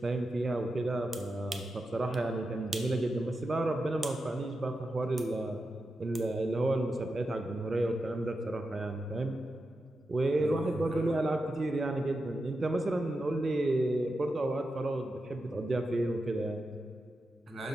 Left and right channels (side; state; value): both; normal; correlation 0.89